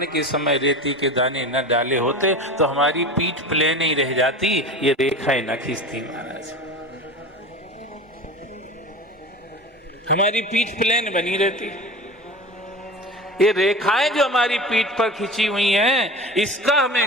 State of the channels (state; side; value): normal; both; correlation 0.32